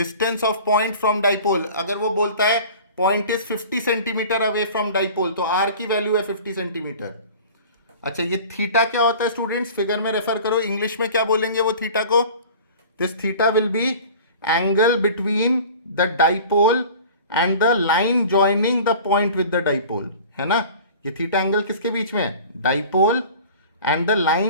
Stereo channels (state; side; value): inverted; both; correlation -0.42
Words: of point from dipole. अगर वो बोलता है point is 50 centimetre away from dipole, तो आर की वैल्यू है 50 सेंटीमीटर। अच्छा, ये थीटा क्या होता है स्टूडेंट्स, फिगर में रेफर करो, इंग्लिश में क्या बोलेंगे वो थीटा को, this theta will be angle between the dipole and the line joining the point with the dipole, है ना। ये थीटा एंगल किसके बीच में है, dipole and the